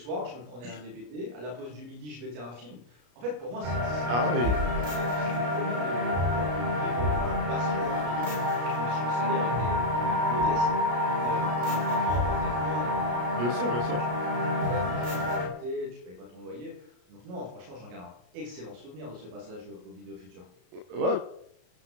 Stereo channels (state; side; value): late; left; 33 ms